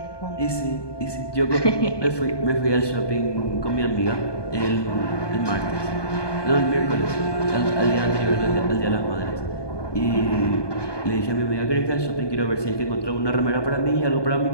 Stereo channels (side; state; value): right; late; 1.2 ms